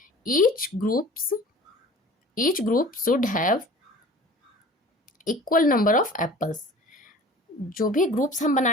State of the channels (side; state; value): both; normal; correlation 0.44